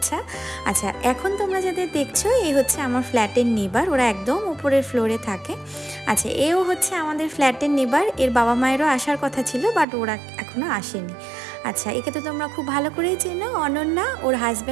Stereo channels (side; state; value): left; drops out; at 9.9 s